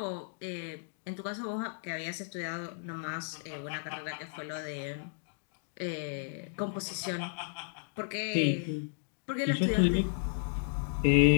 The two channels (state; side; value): silent; right; digital silence